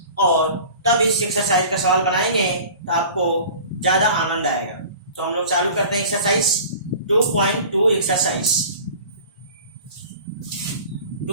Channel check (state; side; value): inverted; both; correlation -0.42